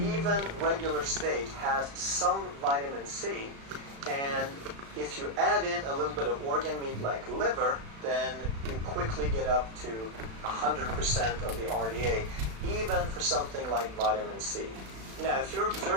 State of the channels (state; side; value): late; left; 36 ms